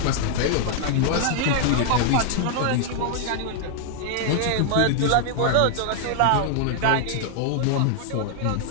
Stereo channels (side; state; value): both; different; correlation 0.00